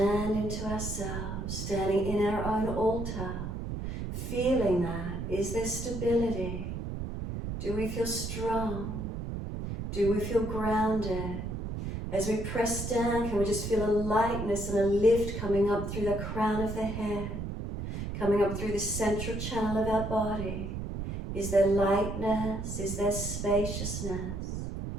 into ourselves, standing in our own altar, feeling that. Is there stability? Do we feel strong? Do we feel grounded? As we press down, can we just feel a lightness and a lift coming up through the crown of the head, coming up through the central channel of our body? Is there lightness? Is there spaciousness?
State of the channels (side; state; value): right; noise; rumble, 5 dB below the sound